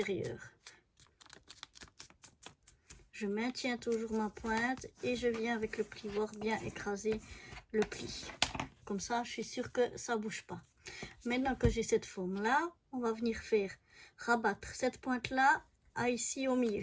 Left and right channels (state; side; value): identical; both; correlation 1.00